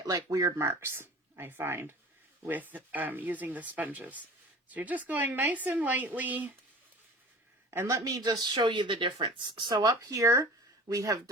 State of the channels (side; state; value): both; normal; correlation 0.40